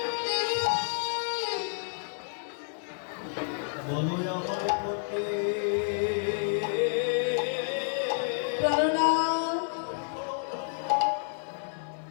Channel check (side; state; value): right; silent; digital silence